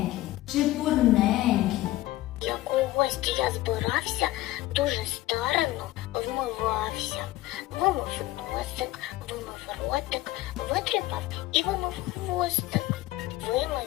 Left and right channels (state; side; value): quieter; right; 16.8 dB